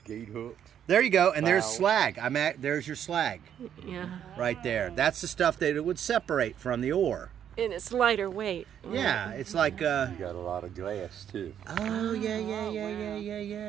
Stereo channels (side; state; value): left; quieter; 9.4 dB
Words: Gate hooks. There you go, and there's slag. There's your slag. Yeah. Right there. That's the stuff that it would separate from the ore. And it's lighter weight. Right? Yeah, it's like. You got a lot of glass too. Oh